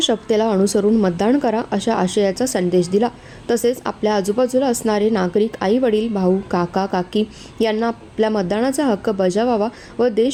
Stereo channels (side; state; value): both; identical; correlation 1.00